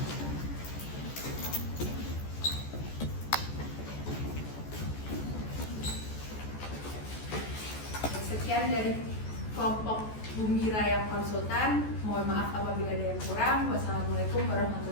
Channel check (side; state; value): right; late; 14 ms